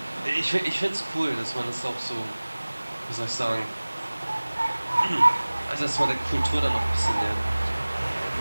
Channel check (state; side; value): inverted; both; correlation -1.00